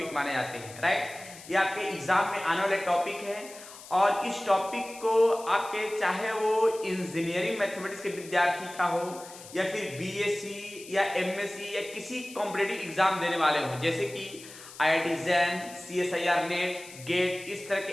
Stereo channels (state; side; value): noise; left; hiss, 17 dB below the sound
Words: माने जाते हैं, राइट। ये आपके एग्जाम में आने वाले टॉपिक है, और इस टॉपिक को आपके चाहे वो इंजीनियरिंग मैथमेटिक्स के विद्यार्थी का हो या फिर बीएससी या एमएससी या किसी कॉम्पिटिटिव एग्जाम देने वाले हो, जैसे कि IIT JAM, CSIR NET, GATE, इस तरह के